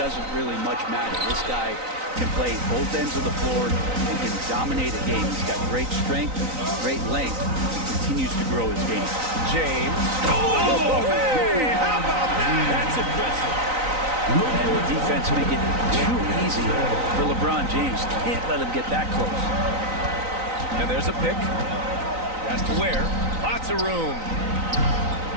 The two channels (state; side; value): late; left; 3.9 ms